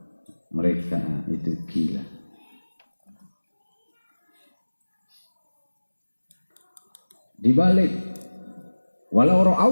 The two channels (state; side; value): inverted; both; correlation -1.00